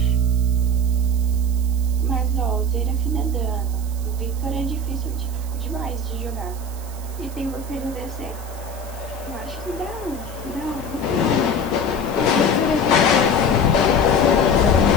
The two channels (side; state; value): right; noise; hiss, 18 dB below the sound